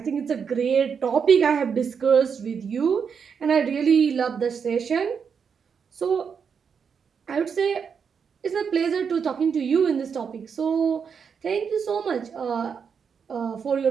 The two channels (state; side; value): quieter; left; 6.6 dB